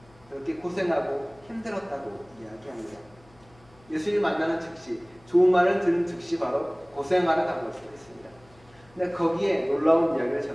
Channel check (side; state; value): left; noise; hum, 28 dB below the sound